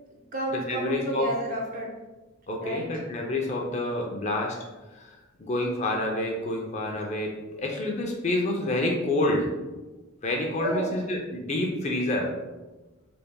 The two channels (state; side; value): normal; both; correlation 0.28